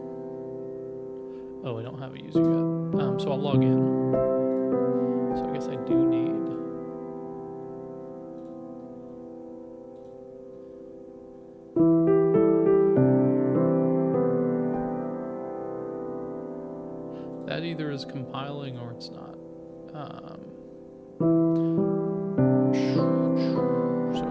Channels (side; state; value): both; identical; correlation 1.00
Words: Oh, I don't have a user yet. So I'll log in. So I guess I do need. That either is compiling or it's not.